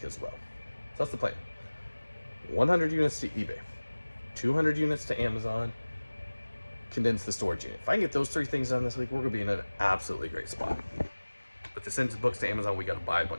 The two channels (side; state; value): both; inverted; correlation -1.00